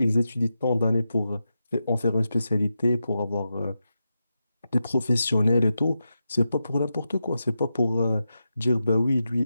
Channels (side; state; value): both; inverted; correlation -0.89